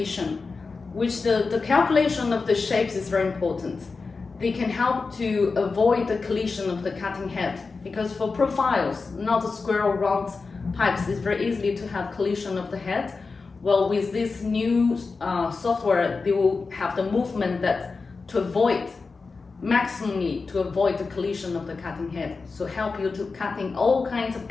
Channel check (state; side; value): quieter; right; 4.3 dB